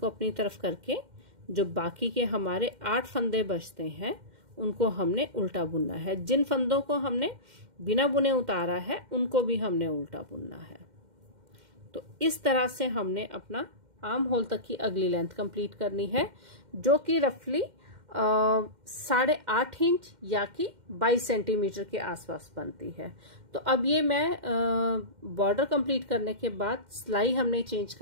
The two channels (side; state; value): left; late; 2.1 ms